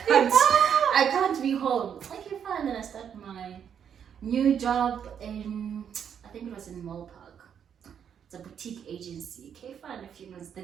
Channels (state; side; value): quieter; left; 8.2 dB